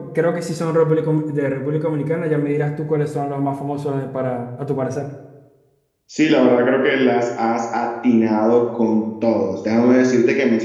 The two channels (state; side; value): identical; both; correlation 1.00